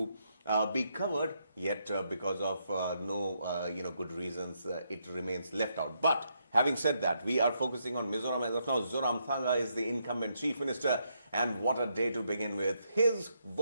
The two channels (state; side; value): inverted; both; correlation -0.78